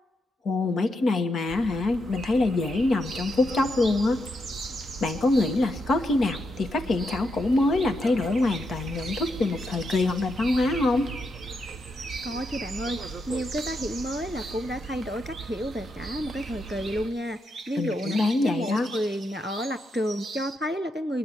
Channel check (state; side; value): normal; both; correlation 0.82